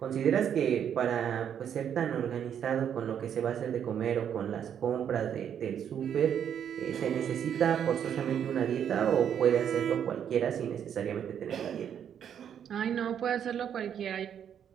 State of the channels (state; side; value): quieter; left; 8.8 dB